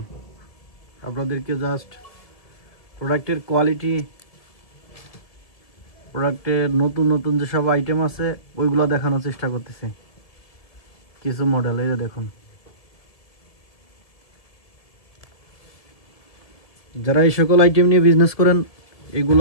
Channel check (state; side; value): late; right; 1.8 ms